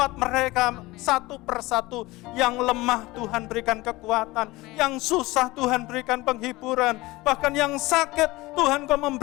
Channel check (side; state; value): right; quieter; 20.5 dB